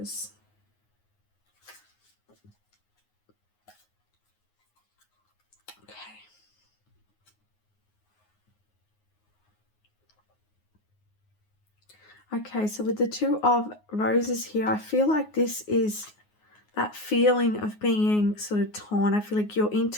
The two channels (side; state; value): right; late; 9.5 ms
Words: Okay, so with the 2 of Roses here, I feel like this is that feeling of being sort of torn. I feel like your